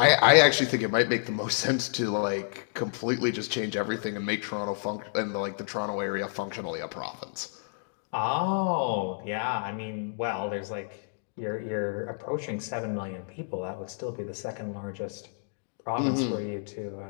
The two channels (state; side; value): silent; right; digital silence